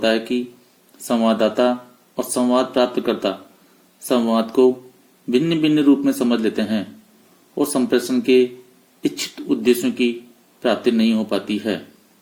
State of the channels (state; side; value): identical; both; correlation 1.00